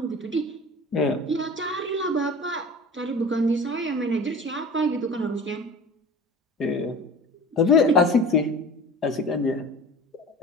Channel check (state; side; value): normal; both; correlation 0.37